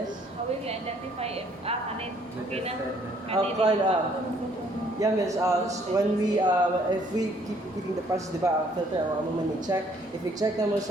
How will you identify if, kanin, okay na? Yeah, miss, when we, if we keep repeating the process, di ba, ang filter, ang mo man check. If we check naman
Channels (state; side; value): normal; both; correlation 0.63